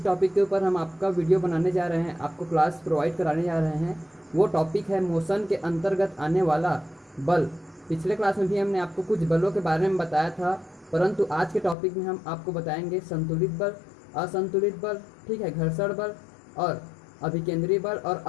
टॉपिक के ऊपर हम आपका वीडियो बनाने जा रहे हैं, आपको क्लास प्रोवाइड कराने जा रहे हैं, वो टॉपिक है मोशन के अंतर्गत आने वाला बल। पिछले क्लास में भी हमने आपको कुछ बलों के बारे में बताया था, परंतु आज के टॉपिक में हम आपको बताएंगे संतुलित बल, असंतुलित बल, ठीक है, घर्षण बल और अभिकेंद्रीय बल और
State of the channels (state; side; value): drops out; right; at 11.8 s